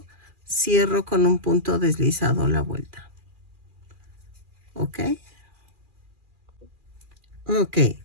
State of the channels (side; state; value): left; late; 2.4 ms